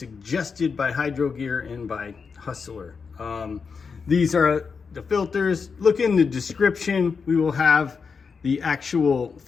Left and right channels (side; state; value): right; quieter; 5.4 dB